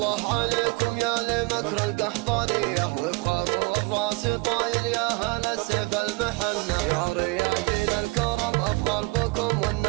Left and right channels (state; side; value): quieter; left; 26.7 dB